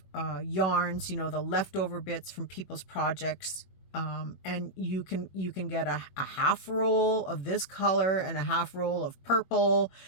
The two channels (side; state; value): right; late; 21 ms